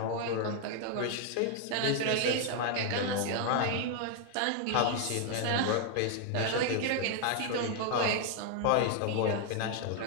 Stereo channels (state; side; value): different; both; correlation 0.00